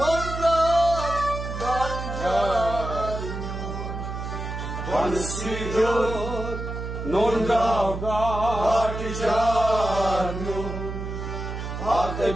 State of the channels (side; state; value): right; noise; hum, 6 dB below the sound